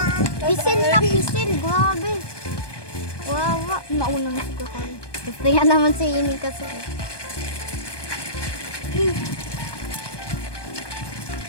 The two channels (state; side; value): late; right; 1.2 ms